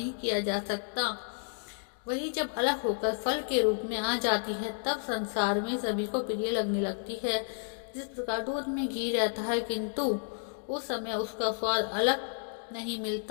किया जा सकता, वही जब अलग होकर फल के रूप में आ जाती है, तब संसार में सभी को प्रिय लगने लगती है। जिस प्रकार दूध में घी रहता है, किंतु उस समय उसका स्वाद अलग नहीं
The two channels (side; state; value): right; silent; digital silence